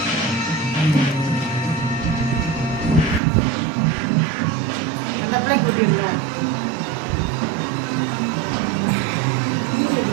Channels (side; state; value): left; drops out; at 3.2 s